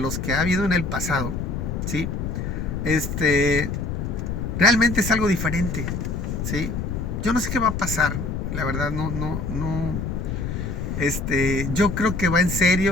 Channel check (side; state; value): left; noise; rumble, 3 dB below the sound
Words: que ha habido en el pasado, ¿sí? Realmente es algo diferente, ¿sí? Yo no sé qué va a pasar, la verdad, no. Yo creo que va en